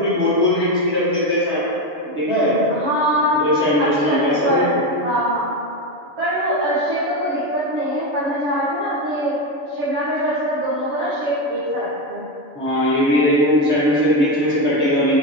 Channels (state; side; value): late; left; 7.0 ms